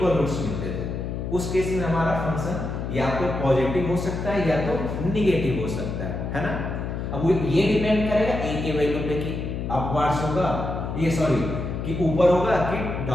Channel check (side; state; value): left; noise; hum, 4 dB below the sound